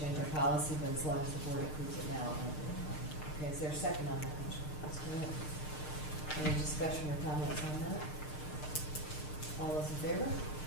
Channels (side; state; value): right; late; 6.6 ms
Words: our policy, but as long as the board approves it now. Okay, is there a second on that motion? Mr. Wynn? Any discussion or comments on that? All those in favor?